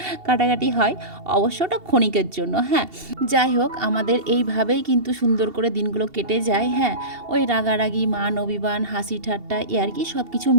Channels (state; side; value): late; left; 2.7 ms